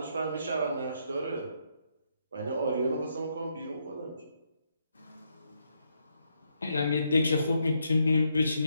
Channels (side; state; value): both; inverted; correlation -0.77